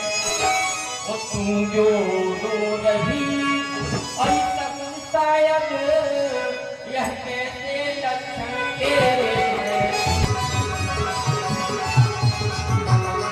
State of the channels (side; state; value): both; identical; correlation 1.00